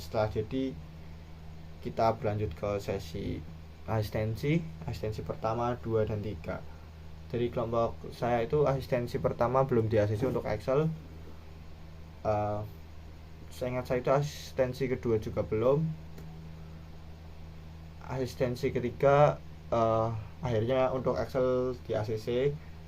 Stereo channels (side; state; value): both; identical; correlation 1.00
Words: setelah jadi, kita berlanjut ke sesi asistensi pertama, 2, dan 3. Dari kelompok saya itu asistensi pertama belum di-ACC untuk Excel. Saya ingat saya itu asistensi kedua juga belum. Asistensi ketiga akhirnya untuk Excel di-ACC